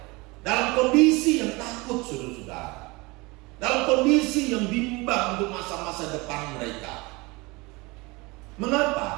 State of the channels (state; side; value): quieter; left; 24.6 dB